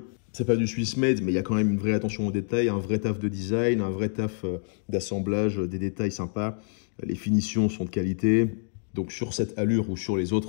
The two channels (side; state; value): right; silent; digital silence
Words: C'est pas du Swiss made, mais il y a quand même une vraie attention aux détails, un vrai taf de design, un vrai taf d'assemblage, des détails sympas. Les finitions sont de qualité. Donc sur cette allure ou sur les